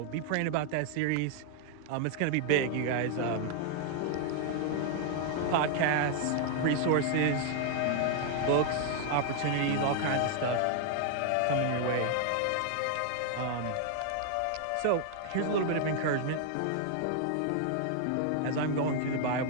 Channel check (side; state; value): both; different; correlation 0.00